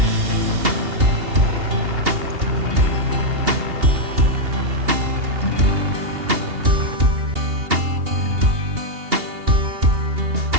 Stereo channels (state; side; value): late; left; 2.8 ms